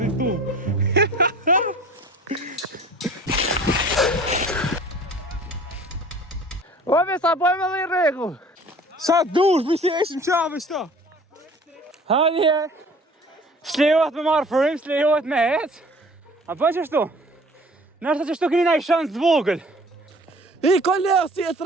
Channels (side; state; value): both; normal; correlation 0.47